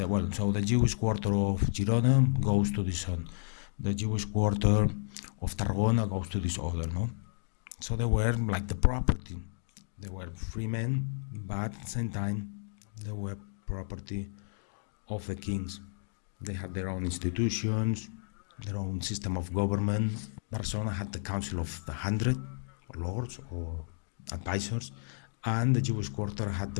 well, so the Jewish quarter of Girona goes to this one, the Jewish quarter of Tarragona goes to this other, no? So they were like the property. They were free men, but at the same time they were property of the kings. They had their own institutions, their own system of government. Barcelona had the Council of the 100, or lords or advisors, and the Jewish quarter had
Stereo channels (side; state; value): right; silent; digital silence